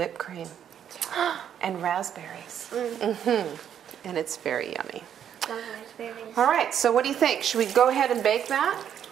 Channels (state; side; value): quieter; left; 9.3 dB